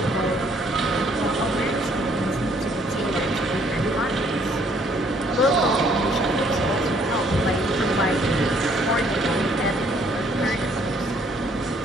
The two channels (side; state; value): both; normal; correlation 0.64